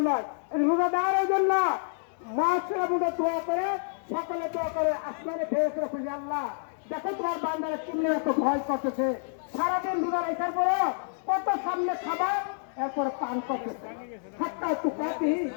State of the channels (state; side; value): silent; right; digital silence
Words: নয়। রোজা দেওয়ার জন্য মহাসেরা বুঝে দোয়া করে, সকালে দোয়া করে, আসমানে ফেরেশতারা খুঁজে, আল্লাহ দেখো তোমার বান্দারা কিনে এত ভয় করতেছে, সারাদিন রোজা রাখার পরে কত সামনে খাবার এরপরে পান করতেছে, সাতটায় তো কাটি